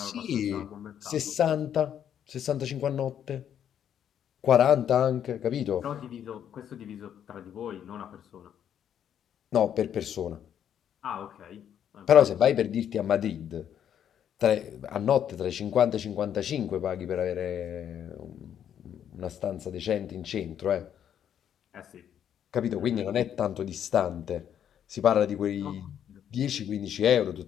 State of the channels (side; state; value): right; quieter; 9.4 dB